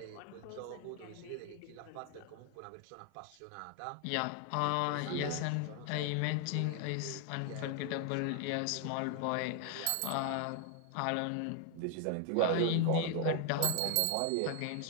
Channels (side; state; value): both; different; correlation 0.01